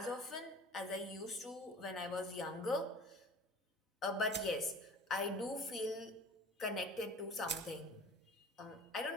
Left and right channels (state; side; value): normal; both; correlation 0.42